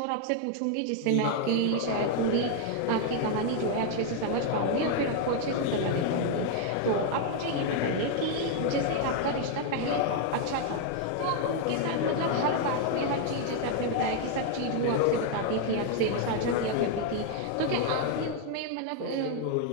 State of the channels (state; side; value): different; both; correlation 0.00